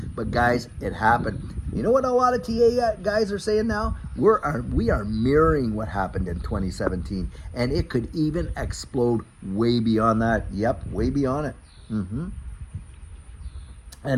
But guys, it happened. You know what a lot of TA guys are saying now? We are mirroring what happened in 2017, and it could even explode way beyond that. Yep, way beyond it.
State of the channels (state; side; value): identical; both; correlation 1.00